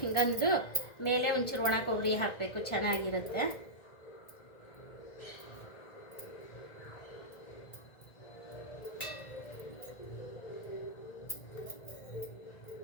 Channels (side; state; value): right; late; 1.8 ms